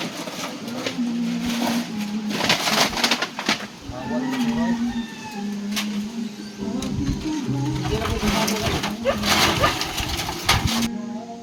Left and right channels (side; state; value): both; identical; correlation 1.00